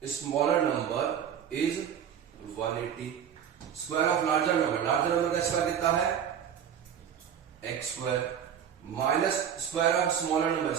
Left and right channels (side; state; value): left; quieter; 8.7 dB